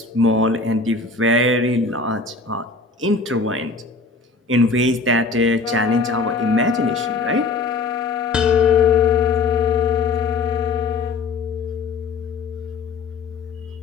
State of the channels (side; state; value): right; quieter; 4.0 dB